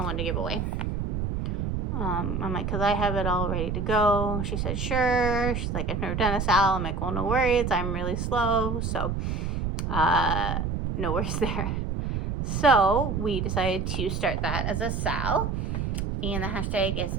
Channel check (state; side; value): noise; right; rumble, 1 dB below the sound